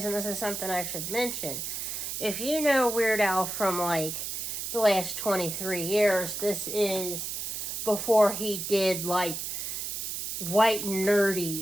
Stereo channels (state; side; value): noise; right; hiss, 4 dB below the sound